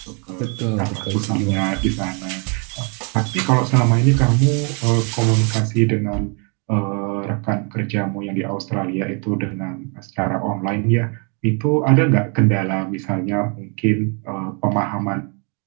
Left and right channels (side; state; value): left; quieter; 36.1 dB